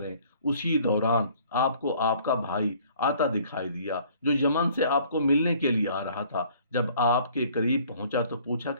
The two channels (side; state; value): both; inverted; correlation -0.56